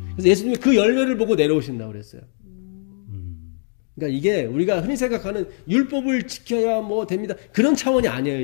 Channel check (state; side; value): silent; right; 61 dB below the other